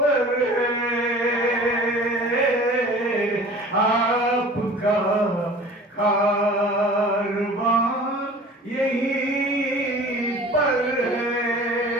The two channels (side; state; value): both; normal; correlation 0.43